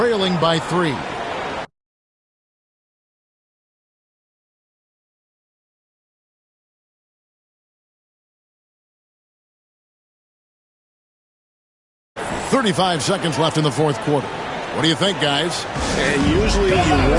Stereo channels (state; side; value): identical; both; correlation 1.00